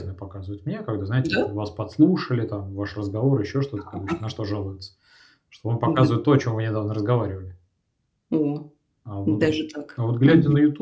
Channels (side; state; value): both; identical; correlation 1.00